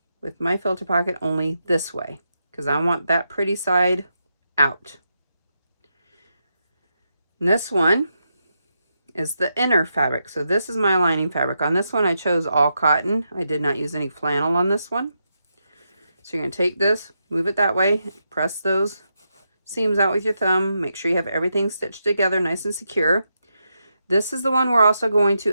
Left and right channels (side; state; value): both; inverted; correlation -0.84